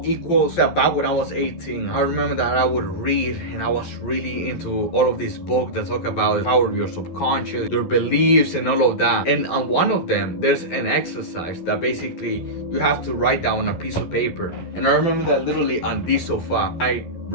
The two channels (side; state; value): right; late; 12 ms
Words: equals that. Back when I was 18, I remember that I would read and I was really into all of these books that talk about the power of your subconscious, your beliefs, and all of that. And on one of them, there's an exercise that basically you have to write down on a piece of paper. And I remember that literally on this sofa, I